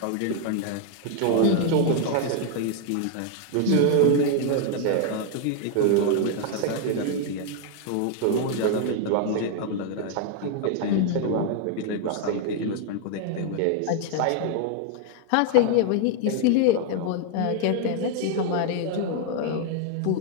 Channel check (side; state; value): both; different; correlation 0.00